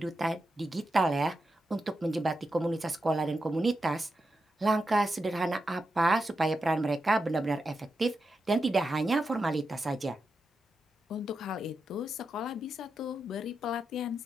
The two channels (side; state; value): both; normal; correlation 0.88